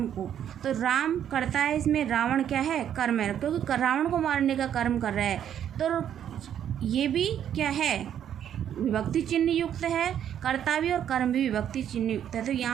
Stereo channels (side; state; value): left; quieter; 9.8 dB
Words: को, तो राम कर्ता है, इसमें रावण क्या है, कर्म है, क्योंकि रावण को मारने का कर्म कर रहा है, तो ये भी क्या है, विभक्ति चिन्ह युक्त है। कर्ता भी और कर्म भी विभक्ति चिन्ह युक्त है। तो